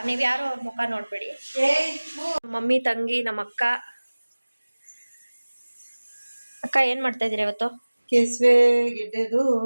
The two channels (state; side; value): inverted; both; correlation -1.00